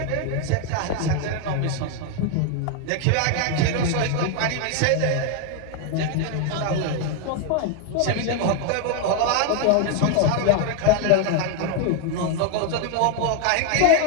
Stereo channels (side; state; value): both; different; correlation 0.00